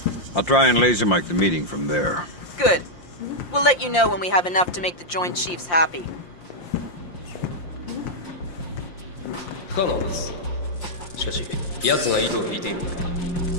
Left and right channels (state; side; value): late; right; 5.7 ms